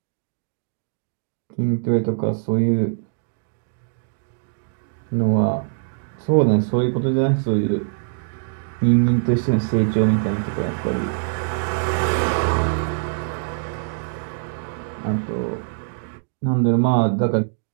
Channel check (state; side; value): silent; left; digital silence